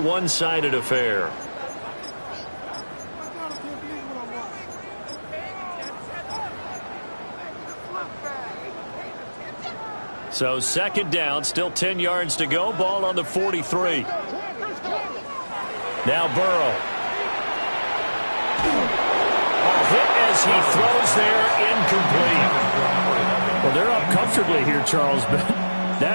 affair. So second down, still 10 yards to go. Ball on the 43. Now Burrow. Hit as he throws there, incomplete. Well, they're up comfortably here, Charles, but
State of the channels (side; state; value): both; inverted; correlation -1.00